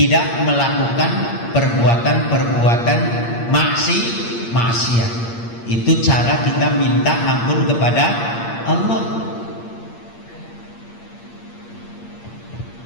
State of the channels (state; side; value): late; right; 8.6 ms